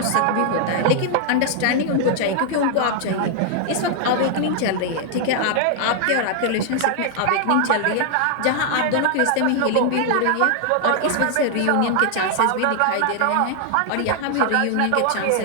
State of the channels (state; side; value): different; both; correlation 0.00